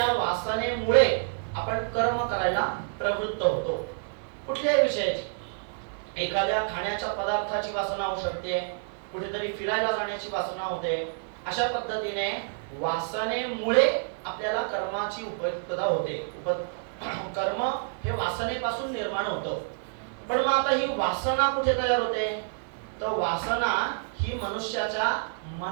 वासनेमुळे आपण कर्म करायला प्रवृत्त होतो. कुठल्याही विषयाची, एखाद्या खाण्याच्या पदार्थाची वासना होऊ शकते, कुठेतरी फिरायला जाण्याची वासना होते. अशा पद्धतीने वासनेमुळे आपल्याला कर्माची उपयुक्तता होते. कर्म हे वासनेपासून निर्माण होतं. पण मग आता ही वासना कुठे तयार होते? तर वासना ही मनुष्याच्या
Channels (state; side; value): silent; left; digital silence